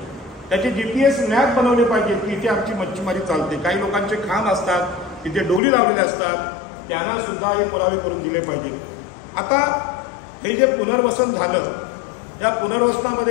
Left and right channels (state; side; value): drops out; right; at 5.6 s